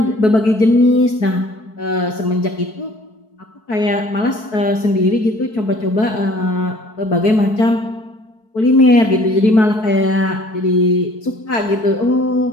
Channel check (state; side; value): late; right; 4.6 ms